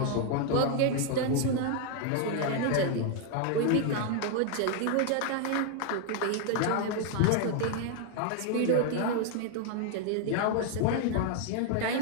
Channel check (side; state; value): both; different; correlation 0.00